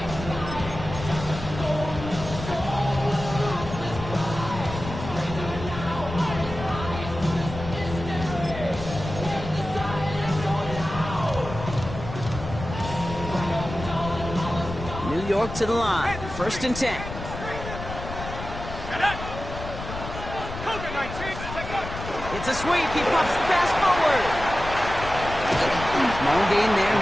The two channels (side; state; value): left; noise; rumble, 9 dB below the sound